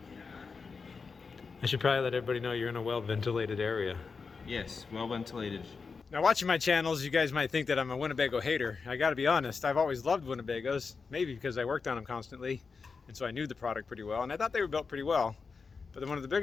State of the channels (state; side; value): quieter; right; 4.9 dB